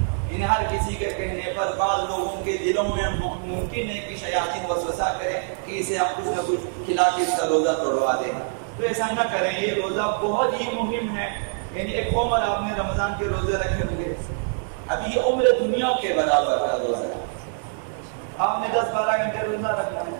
انہیں ہر کسی کے کہنے پر بعض لوگوں کے دلوں میں ممکن ہے کہ شیاطین وسوسہ کریں کہ اسے ہم کچھ نہ کچھ کھلا کے اس کا روزہ توڑوا دیں، تو ایسا نہ کریں۔ یہ روزہ بہت ہی مہم ہے، یعنی ایک عمر آپ نے رمضان کے روزے رکھے ہوں گے، ابھی یہ عمر دنیا کے برابر کا روزہ ہے۔ آپ نے 10-12 گھنٹے روزہ رکھنا ہے،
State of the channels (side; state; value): left; silent; digital silence